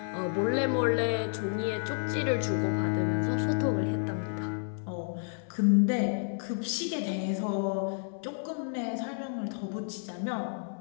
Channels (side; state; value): right; silent; digital silence